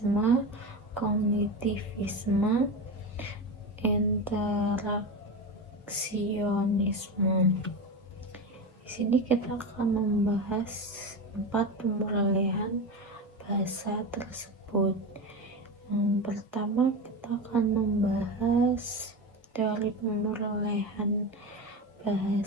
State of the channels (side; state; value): both; normal; correlation 0.22